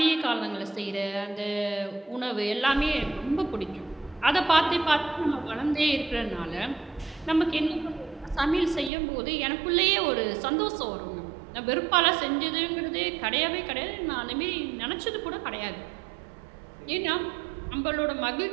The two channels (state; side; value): drops out; left; at 8.9 s